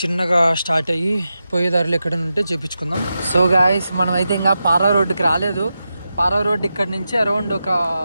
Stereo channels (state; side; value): inverted; both; correlation -0.90